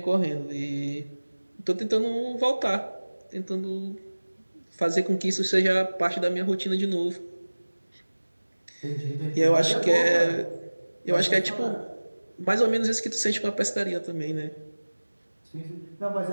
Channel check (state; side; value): inverted; both; correlation -1.00